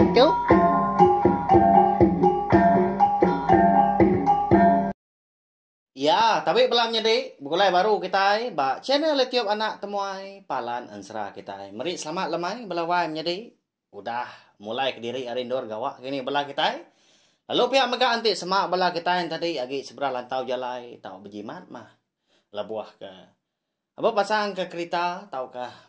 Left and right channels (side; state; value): both; identical; correlation 1.00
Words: Ya, tapi belum jadi. Mulai baru kita ba channel YouTube anak temuai Palan Ansra kita. Mari selamat lemai belawai jadi. Udah mulai ke diri arindor gawak gini belah kita. Lalu pihak mega anti semak belah kita yang tadi agi seberang lantau jalai tau berjimat mah. Labuah ke. Apa pasang ke kereta tau kah